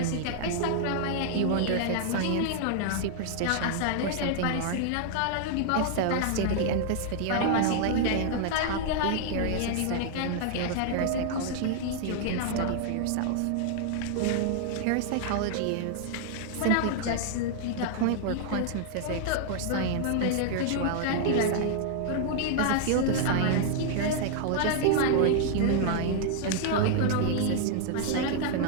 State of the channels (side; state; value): both; different; correlation 0.00